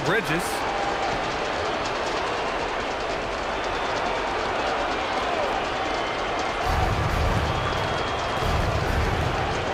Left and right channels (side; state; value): both; identical; correlation 1.00